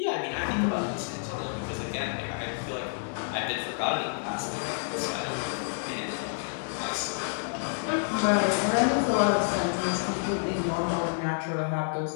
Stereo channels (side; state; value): right; silent; digital silence